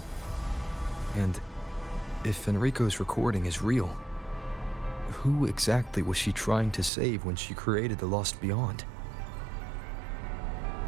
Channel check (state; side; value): drops out; left; at 6.9 s